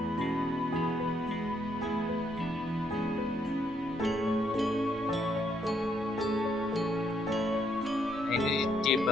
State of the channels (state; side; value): normal; both; correlation 0.73